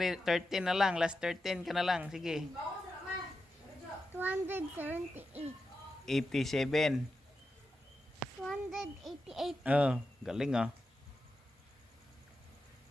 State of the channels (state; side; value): normal; both; correlation 0.89